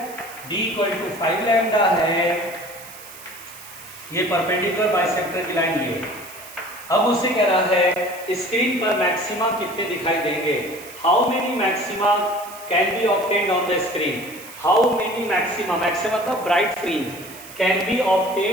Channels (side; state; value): right; noise; hiss, 17 dB below the sound